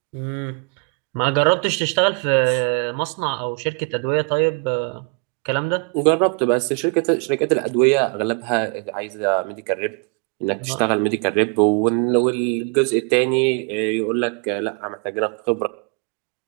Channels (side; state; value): left; quieter; 34.9 dB